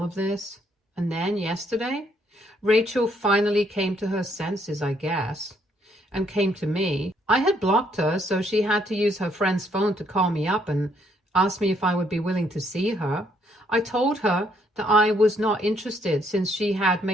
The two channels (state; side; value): normal; both; correlation 0.70